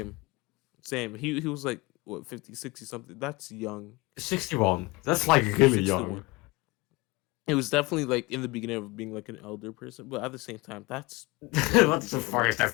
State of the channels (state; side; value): quieter; right; 22.9 dB